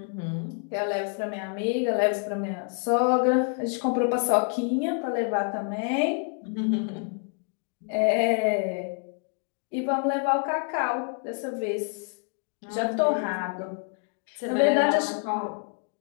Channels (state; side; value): quieter; right; 39.1 dB